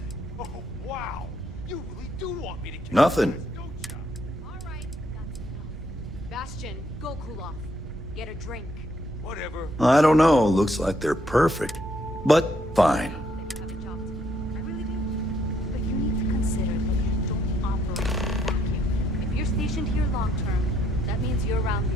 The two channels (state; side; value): normal; both; correlation 0.71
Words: Oh, wow. You really do want me to kill Nothing. Bastion, go cool off. Get a drink. Whatever. I don't know. Looks like they're perfect. But fine. But you need to consider that you don't operate in a vacuum. If you're stationed here long term, that means you're around